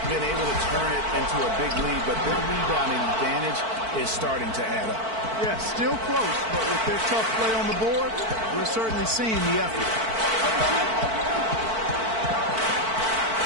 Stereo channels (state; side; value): late; left; 4.5 ms